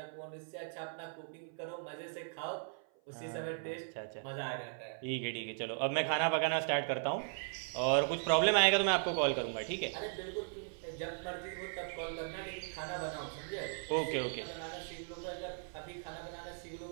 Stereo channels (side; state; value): left; silent; 53 dB below the other